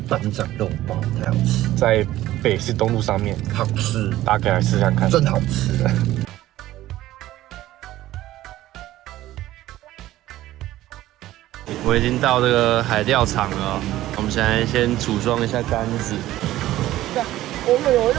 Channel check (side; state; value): left; quieter; 14.9 dB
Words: 班长肉包太好吃，在北市东路上面，好吃，大家可以来试看看，真好吃。我已经到这个海钓场了，我们现在先组装一下杆子。哦，